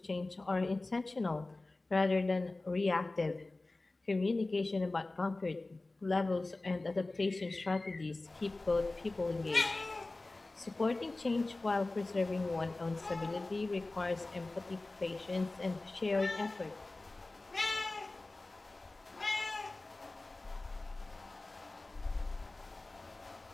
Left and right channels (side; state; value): right; quieter; 3.1 dB